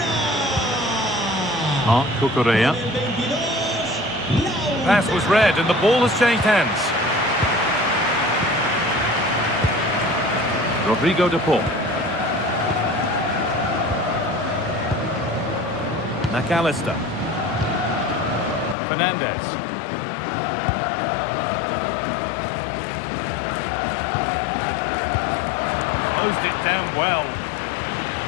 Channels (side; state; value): right; drops out; at 18.8 s